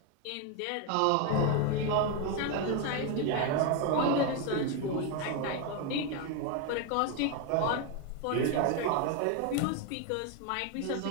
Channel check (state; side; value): different; both; correlation 0.02